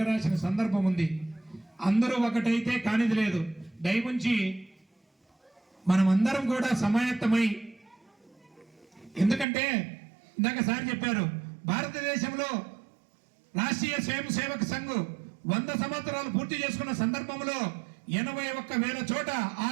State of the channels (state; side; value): drops out; left; at 9.5 s